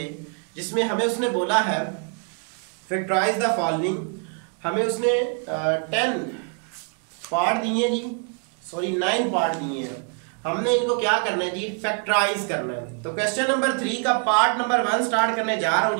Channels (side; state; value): left; quieter; 38.7 dB